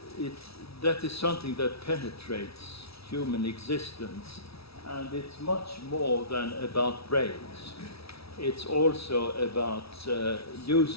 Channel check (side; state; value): right; late; 0.76 ms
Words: something that penetrates human existence, and it's much more than about brains. It's also about